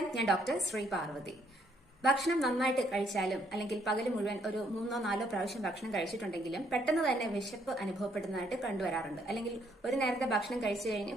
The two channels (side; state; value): both; normal; correlation 0.69